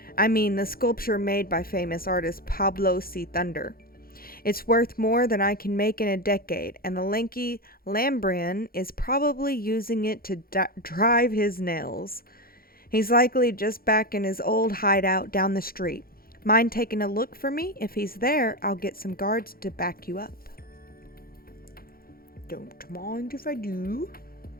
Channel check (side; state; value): right; late; 0.43 ms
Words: I mean the sculpture made by famous artist Pablo C. Thunder. It's worth more than I can make in a decade, and the lanky Lambrian is probably using it to drive his nails. He's likely just back in his old hideout down the street. Mind taking a look for me? If he's there, I'll get some guards to back you up. Don't mind if I do.